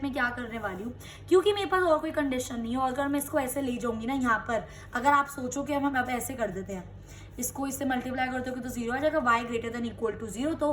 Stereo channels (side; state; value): both; identical; correlation 1.00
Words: में क्या करने वाली हूँ, क्योंकि मेरे पास और कोई कंडीशन नहीं है। और अगर मैं इसको ऐसे ले जाऊंगी ना यहाँ पर, अगर आप सोचो कि हम अब ऐसे कर देते हैं, इसको इससे मल्टीप्लाई करते हो तो 0 आ जाएगा, y greater than equal to 0,